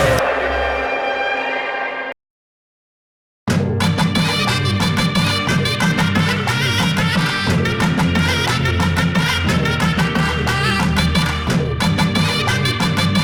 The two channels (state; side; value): identical; both; correlation 1.00